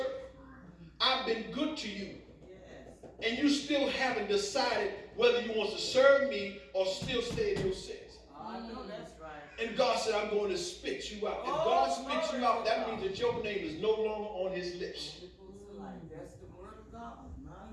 I've been good to you. Yes. And you still haven't decided whether you want to serve me or still stay in your sins. I know that's right. And God said, I'm going to spit you out. If God spits you out, that means that your name is no longer on his lips. That's the word of God, my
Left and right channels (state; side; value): identical; both; correlation 1.00